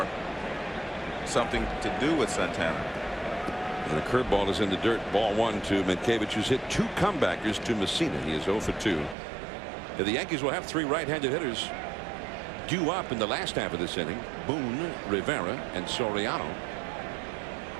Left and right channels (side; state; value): left; drops out; at 9.2 s